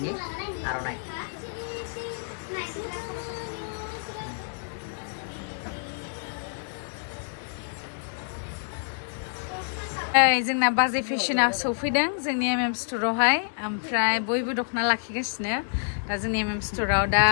आर'नाइ जोंना बाजै फेशना सफैदों जोंनि MM स्ट'रावहाय ओमफ्राय बयबो दख'ना लाखिगासिनो दा जोंनि MM स्ट'राव दा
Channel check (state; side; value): silent; right; digital silence